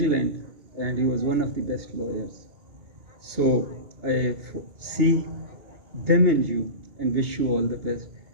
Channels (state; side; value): late; left; 2.3 ms